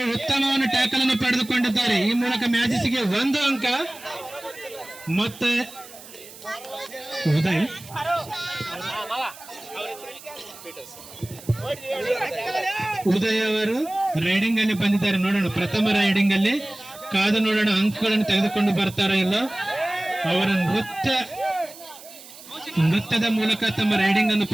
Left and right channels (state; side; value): noise; right; hiss, 18 dB below the sound